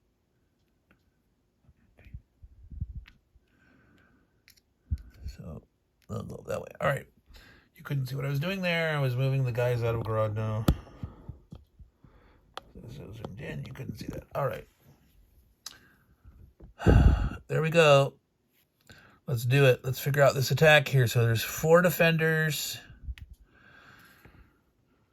So they'll go that way. All right. You couldn't see what I was doing there. I was moving the guys out of Grodno. So zoomed in. You couldn't see that. All right. There we go. Let's do it. Let's figure out this attack here. So there's 4 defenders.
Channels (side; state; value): both; identical; correlation 1.00